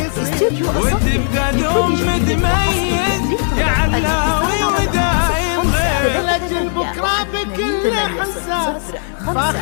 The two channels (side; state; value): right; silent; 57 dB below the other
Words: يصير، وتبقى دوم متميز يا علاوي ودايم خير. لأجل بكرة بكل حساس